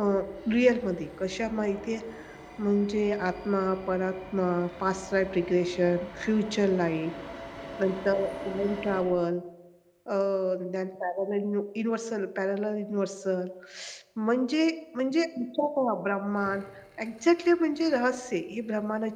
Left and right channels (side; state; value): both; identical; correlation 1.00